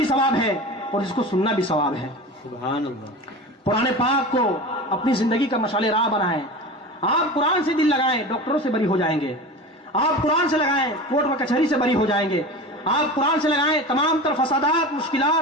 ثواب ہے, اور جس کو سننا بھی ثواب ہے. سبحان اللہ. قرآن پاک کو اپنی زندگی کا مشعل راہ بنائیں. آپ قرآن سے دل لگائیں, ڈاکٹروں سے بری ہو جائیں گے. آپ قرآن سے لگائیں, کورٹ و کچہری سے بری ہو جائیں گے. آپ قرآن سے لگائیں, تمام تر فسادات,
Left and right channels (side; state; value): both; normal; correlation 0.31